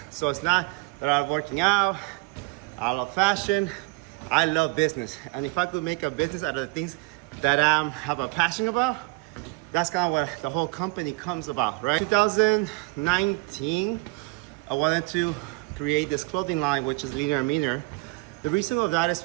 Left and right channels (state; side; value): quieter; left; 27.0 dB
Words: So it's not that I love working out, I love fashion, I love business. And if I could make a business out of the things that I have a passion about, that's kind of what the whole company comes about, right? 2019, I wanted to create this clothing line, which is Leaner and Meaner. The reason of that is